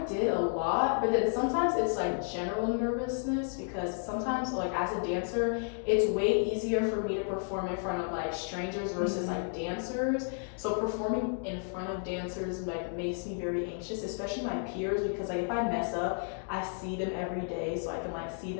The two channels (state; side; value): silent; right; 56 dB below the other